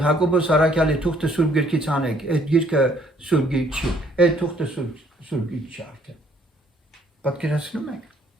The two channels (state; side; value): normal; both; correlation 0.64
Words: Հակոբոս Արաքյալի թուղթը Սուրբ Գրքից անեք, այդ գիրքը Սուրբ Գիրք չի, այդ թուղթը Սուրբ Գիրք չի արդեն։ Պատկերացնում եք։